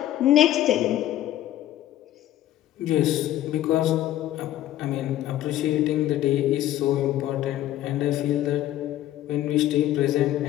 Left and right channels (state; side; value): quieter; right; 13.3 dB